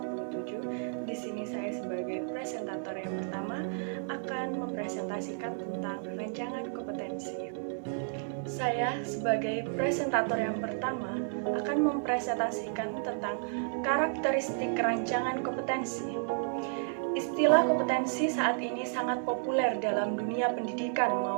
Di sini saya sebagai presentator yang pertama akan mempresentasikan tentang rancangan kompetensi. Saya sebagai presentator yang pertama akan mempresentasikan tentang karakteristik rancangan kompetensi. Istilah kompetensi saat ini sangat populer dalam dunia pendidikan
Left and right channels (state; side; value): silent; left; digital silence